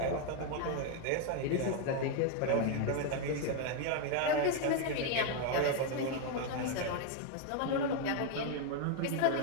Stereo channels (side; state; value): both; different; correlation 0.01